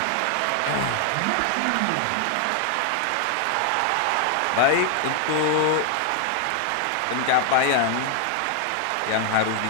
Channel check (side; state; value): both; different; correlation 0.00